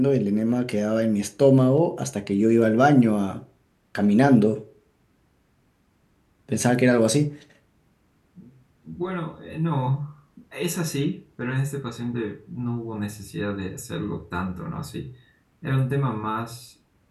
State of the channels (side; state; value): both; identical; correlation 1.00